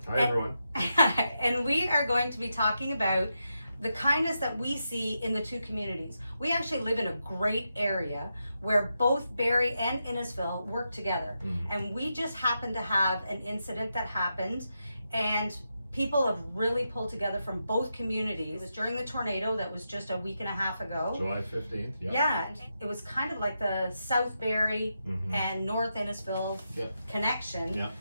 Hi, everyone. And we are going to be talking about the kindness that we see in the two communities. We actually live in a great area where both Barrie and Innisfil work together. And we just happened to have an incident that happened, and people have really pulled together from both communities. It was during the tornado that was just a week and a half ago. July 15th, Yeah, it was kind of like the South Barrie and North Innisfil connection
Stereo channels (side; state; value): both; inverted; correlation -0.86